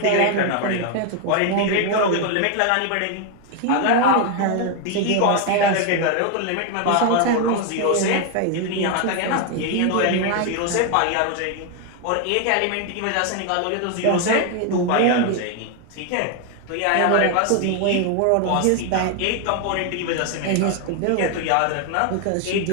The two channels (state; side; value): different; both; correlation 0.01